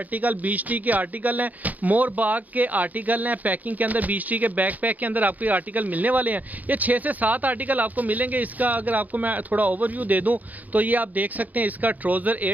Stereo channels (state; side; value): late; left; 0.080 ms